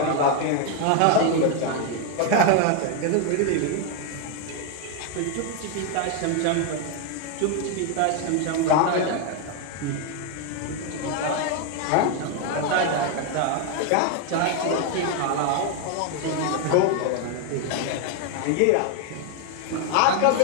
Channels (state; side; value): different; both; correlation 0.01